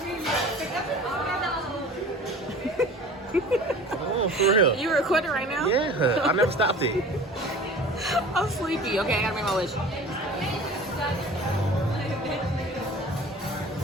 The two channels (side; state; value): both; normal; correlation 0.42